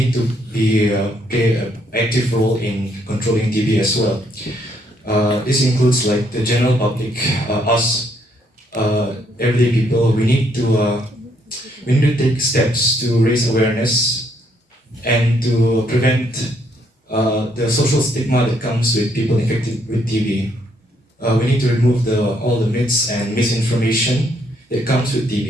to play an active role in controlling TB as well. This includes like the general public, us, everyday people. We need to take steps to raise awareness and to prevent the social stigma that comes with people infected with TB. We need to remove all the myths and misinformation that comes with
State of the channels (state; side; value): normal; both; correlation 0.70